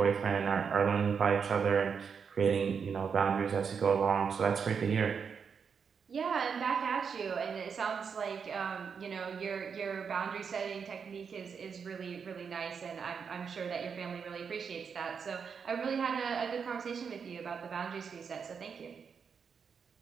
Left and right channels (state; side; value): quieter; left; 6.3 dB